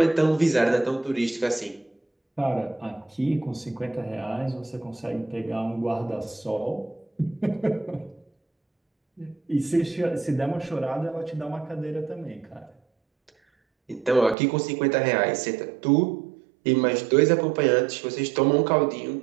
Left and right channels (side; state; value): left; drops out; at 14.4 s